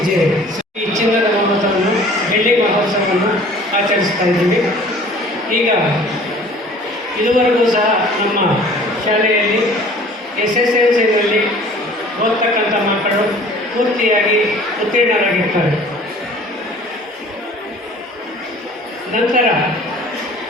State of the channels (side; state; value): both; normal; correlation 0.49